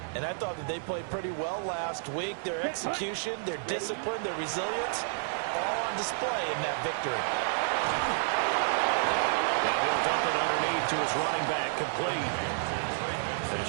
And I thought that they played pretty well last week. Their execution, their discipline, their resilience, all on display in that victory. Now he'll dump it underneath to his running back, complete. And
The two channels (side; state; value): left; silent; 58 dB below the other